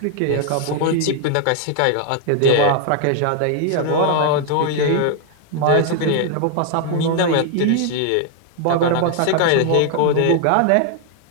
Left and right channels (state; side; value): different; both; correlation 0.00